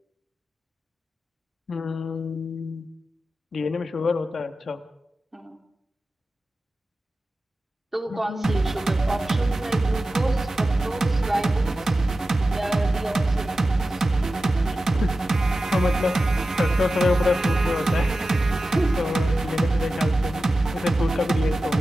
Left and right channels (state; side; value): normal; both; correlation 0.93